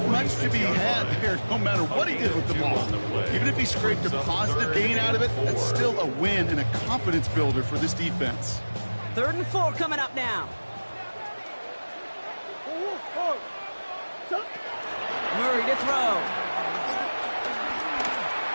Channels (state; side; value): inverted; both; correlation -1.00